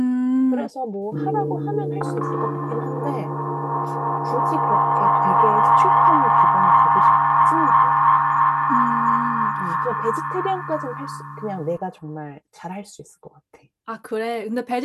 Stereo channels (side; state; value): both; identical; correlation 1.00